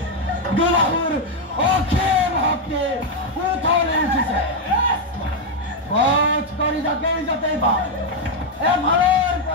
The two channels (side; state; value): both; normal; correlation 0.02